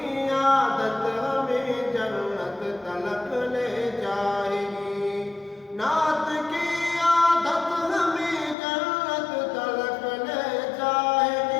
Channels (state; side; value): drops out; right; at 8.6 s